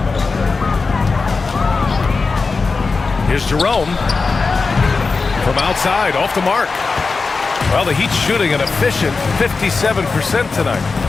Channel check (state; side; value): quieter; right; 4.3 dB